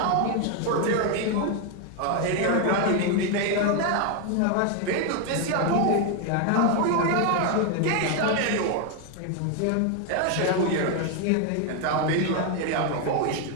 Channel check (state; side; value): different; both; correlation 0.01